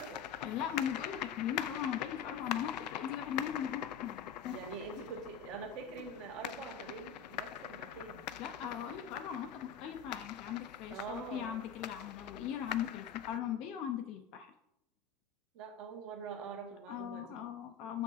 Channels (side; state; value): right; quieter; 7.2 dB